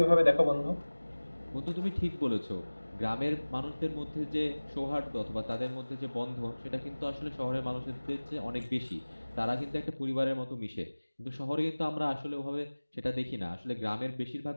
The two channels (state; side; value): inverted; both; correlation -1.00